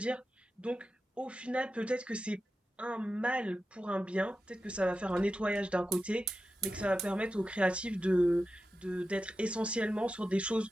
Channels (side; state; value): both; normal; correlation 0.91